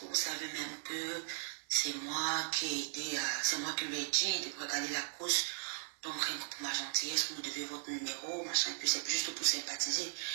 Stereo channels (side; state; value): left; silent; digital silence